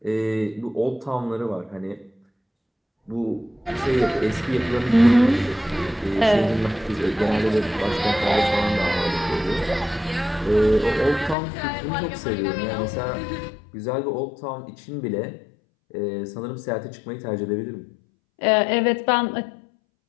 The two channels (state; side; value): drops out; right; at 11.4 s